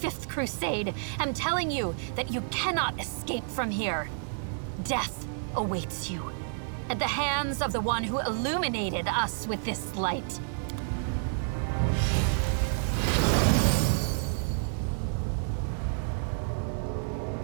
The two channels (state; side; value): silent; left; 58 dB below the other